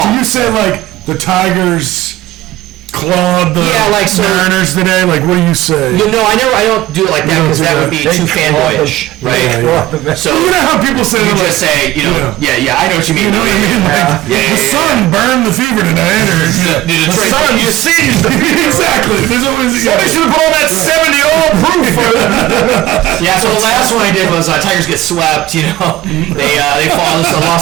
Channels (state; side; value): quieter; left; 16.1 dB